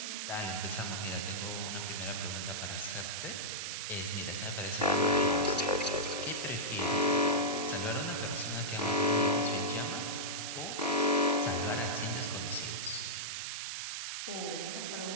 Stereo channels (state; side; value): noise; right; hiss, 4 dB below the sound